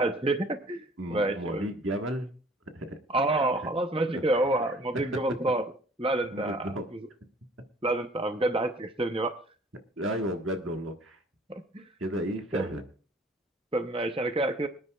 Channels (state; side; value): normal; both; correlation 0.54